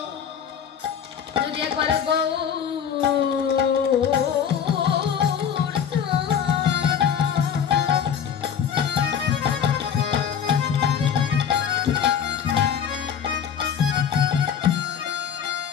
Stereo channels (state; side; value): quieter; right; 8.0 dB